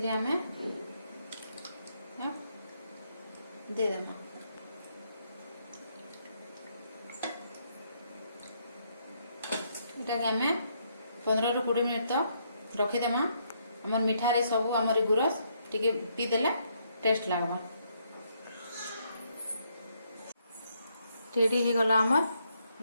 आमे दे देमा। एटा के आमे 15 ରୁ 20 मिनिट तो रखी देमा। हमर मिठा रे सब हमर गुरस टिके पी देले टेस्ट लागबा। रेडी हो गला हमर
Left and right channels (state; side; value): inverted; both; correlation -0.74